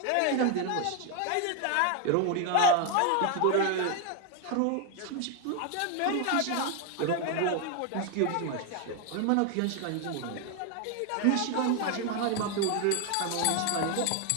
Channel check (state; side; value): different; both; correlation 0.01